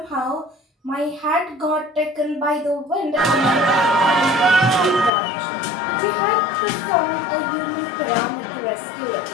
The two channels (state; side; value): drops out; right; at 5.1 s